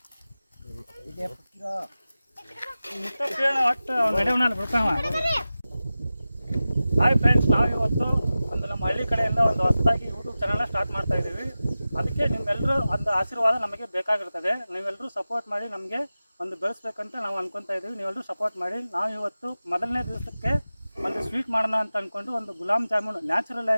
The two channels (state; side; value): inverted; both; correlation -0.95